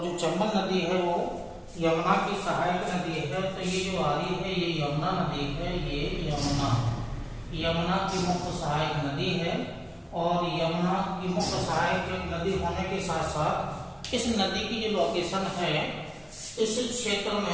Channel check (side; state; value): both; identical; correlation 1.00